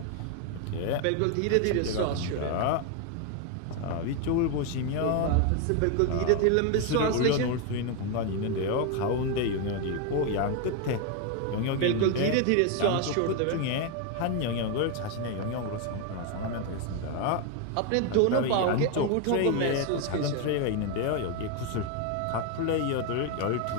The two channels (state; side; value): different; both; correlation 0.01